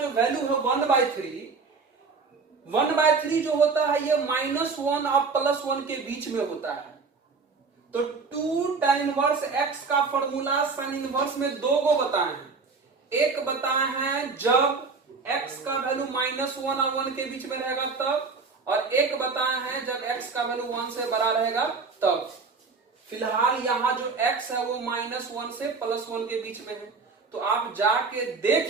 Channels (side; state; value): left; quieter; 4.6 dB